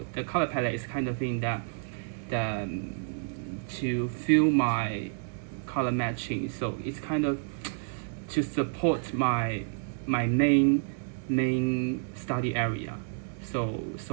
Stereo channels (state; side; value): silent; left; 58 dB below the other